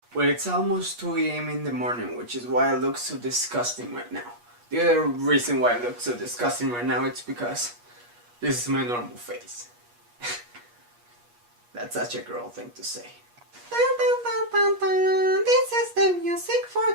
Well, it's almost 2 a.m. in the morning, which is why I look so disgusting right now. The other reason why I look so disgusting right now is because this is my normal face. That's such a girl thing to say. Dun, dun, dun, dun, dun. This is the music for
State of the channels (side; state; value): left; late; 8.4 ms